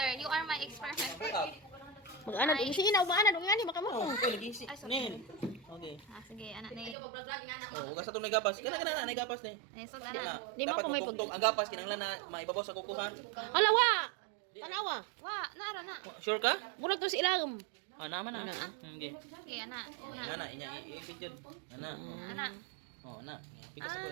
You are my experiment. Mag-ana ding si ina, umaana dong ngani makamo. Oh, okay lagi si. Nil. Okay. Sige, anak ni. Oh, ugas atong nagapas. Kana na nagapas ni. So Kana. dana. Di mo Dapat ako may matungtong ang gapas kinahanglan na maibabaw sa kukuhan. Ala wa. Tanawa. Wa, nara na. Sure ka? Murag to si ilagom. Ana man na. Okay. Okay, anak. Ana inya i-picture. Ana. Anak. Oh, ana. Pikas ko.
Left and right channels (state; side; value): drops out; left; at 7.0 s